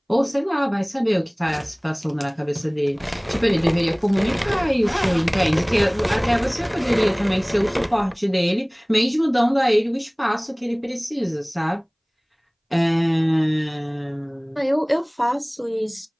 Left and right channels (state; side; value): identical; both; correlation 1.00